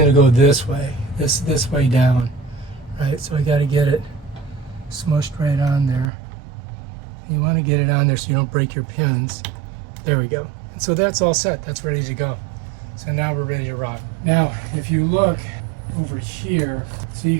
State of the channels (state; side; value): drops out; left; at 6.1 s